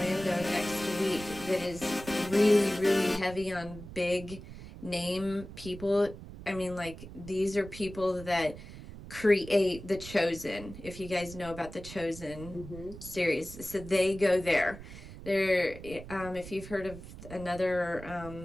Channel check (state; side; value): noise; right; rumble, 14 dB below the sound